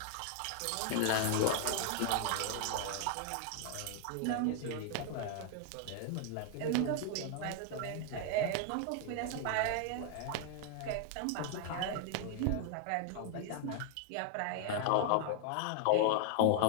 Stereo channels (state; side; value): different; both; correlation 0.00